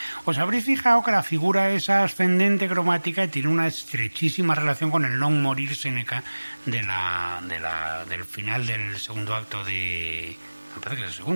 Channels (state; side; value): inverted; both; correlation -1.00